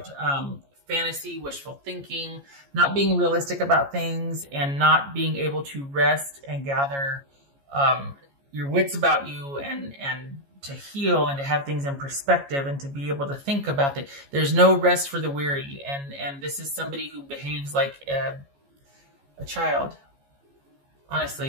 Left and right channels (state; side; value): late; left; 14 ms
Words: fantasy, wishful thinking, not being realistic about things, and not being able to rest and gather your wits about you and to heal and to have things in perspective and to be able to think about it. There's no rest for the weary. And this is somebody who behaves like a child.